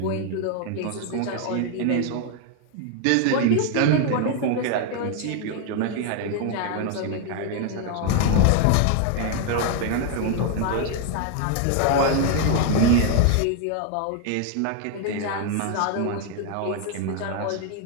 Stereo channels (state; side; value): different; both; correlation 0.00